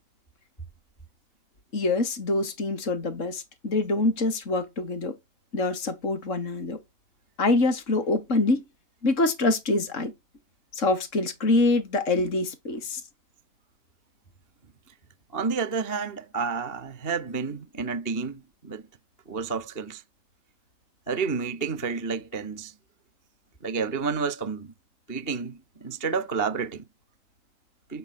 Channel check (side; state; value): right; late; 3.6 ms